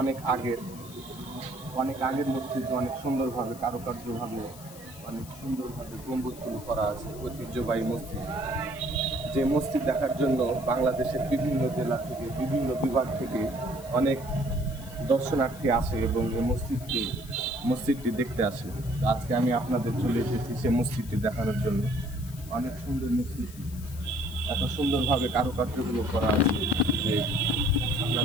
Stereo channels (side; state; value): left; noise; hiss, 18 dB below the sound